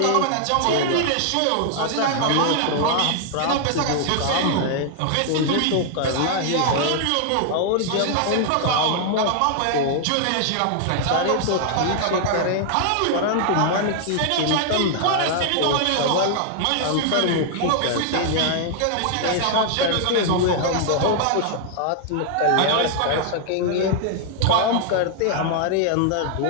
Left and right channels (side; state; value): both; different; correlation 0.00